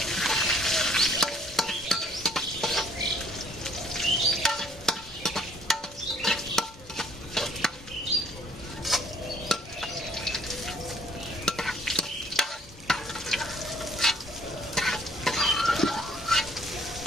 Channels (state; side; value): normal; both; correlation 0.61